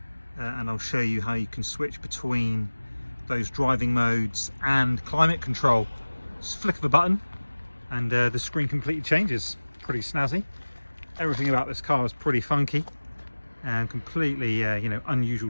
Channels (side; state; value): both; inverted; correlation -1.00